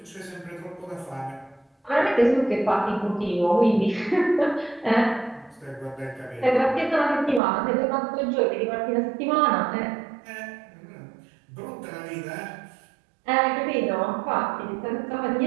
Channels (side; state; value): left; drops out; at 7.4 s